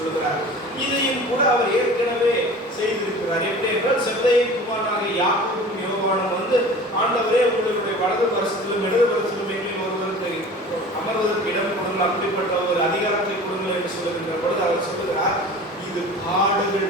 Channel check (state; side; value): normal; both; correlation 0.40